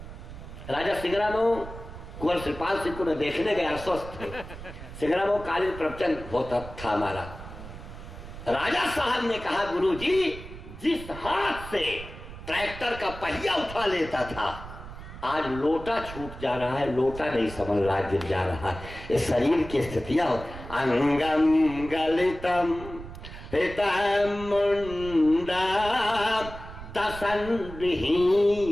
राजा सिंगरामऊ कुंवर श्रीपाल सिंह को मैं देखने गया, अस्वस्थ थे। सिंगरामऊ कालीन प्रवचन होता था हमारा। राजा साहब ने कहा, गुरुजी जिस हाथ से ट्रैक्टर का पहिया उठा लेता था, आज लोटा छूट जा रहा है, लोटा नहीं समझ रहा, गिर जा रहा है। ये शरीर की स्थितियां। अंगम गलितम हितम मुंडा दसन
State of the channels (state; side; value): noise; right; rumble, 13 dB below the sound